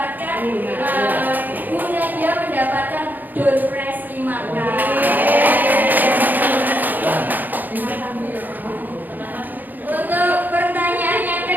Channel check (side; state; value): left; late; 0.085 ms